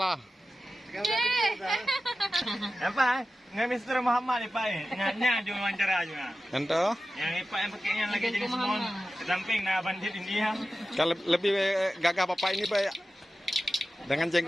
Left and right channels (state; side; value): normal; both; correlation 0.94